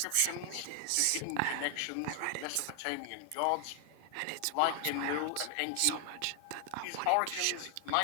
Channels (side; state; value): both; different; correlation 0.00